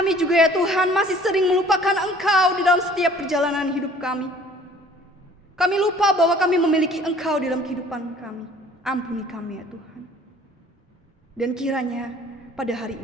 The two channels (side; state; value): both; normal; correlation 0.52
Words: juga ya Tuhan masih sering melupakan Engkau di dalam setiap perjalanan hidup kami. Kami lupa bahwa kami memiliki Engkau di dalam kehidupan kami. Ampuni kami ya Tuhan. Dan kiranya pada hari